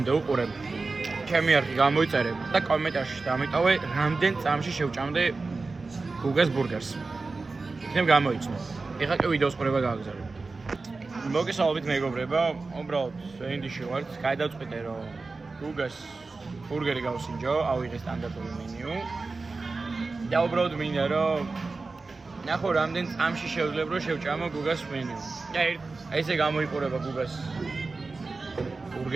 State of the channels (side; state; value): left; quieter; 3.8 dB